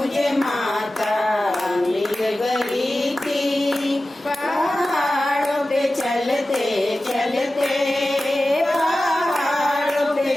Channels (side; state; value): both; normal; correlation 0.95